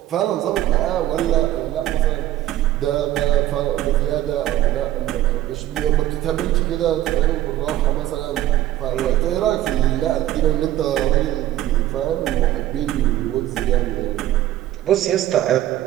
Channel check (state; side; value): quieter; left; 13.7 dB